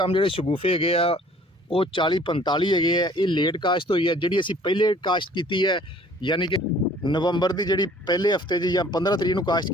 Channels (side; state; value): both; normal; correlation 0.55